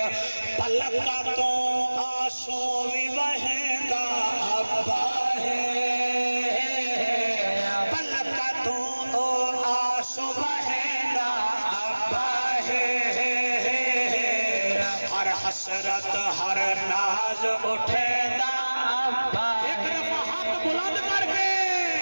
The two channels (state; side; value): inverted; both; correlation -1.00